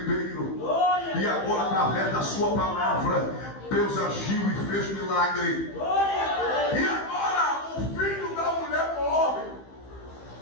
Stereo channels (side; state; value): right; late; 15 ms